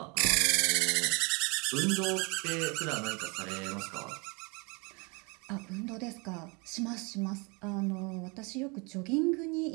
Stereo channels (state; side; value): quieter; left; 30.1 dB